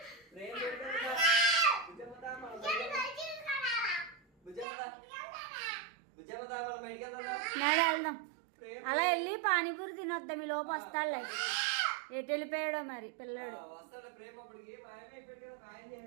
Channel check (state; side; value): drops out; left; at 4.7 s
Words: ప్రేమ్ లేడు కదా. బుజ్జమ్మదా మనం బయటికి వెళ్దాం. నాడు వెళ్దాం. అలా వెళ్ళి పానీపూరి తినొద్దాం. ఈ లోపు వస్తాడులే. ఎటు వెళ్ళిపోయాడో మరి పిల్లడు. వస్తాడు ప్రేమ అప్పటికి మాయమైపోయాడు కదా. మాయం